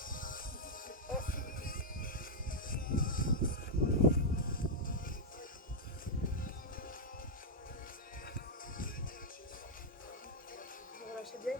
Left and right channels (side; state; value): both; normal; correlation -0.04